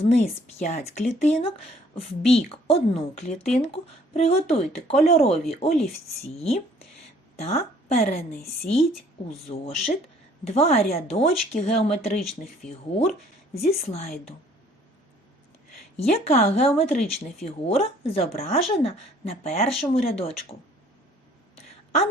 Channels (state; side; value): normal; both; correlation 0.58